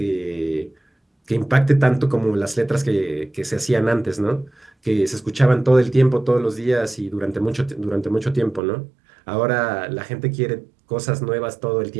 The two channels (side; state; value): left; drops out; at 8.6 s